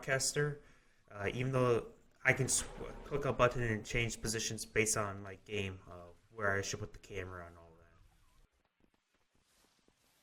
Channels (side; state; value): both; identical; correlation 1.00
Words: even though I can click a button and change positions based on my game, where I should put the camera and all.